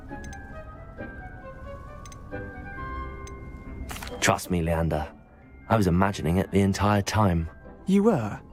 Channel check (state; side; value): identical; both; correlation 1.00